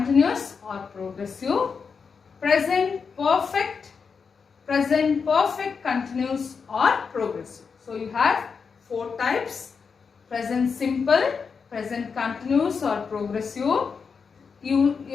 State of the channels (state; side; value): quieter; right; 5.6 dB